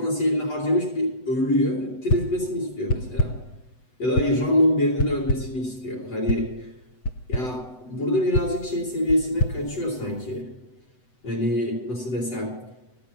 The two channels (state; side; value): late; right; 8.0 ms